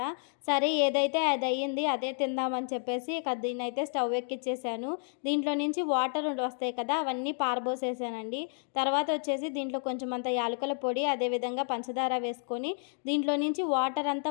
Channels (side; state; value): right; silent; 57 dB below the other